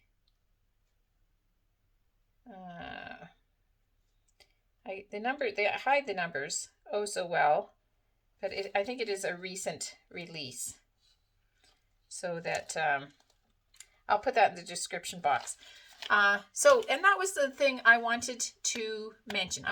they hide the numbers oh so well, but I think it is a recent release. So that, I'll put that in the description box. And that was the thing I wanted to mention.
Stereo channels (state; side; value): identical; both; correlation 1.00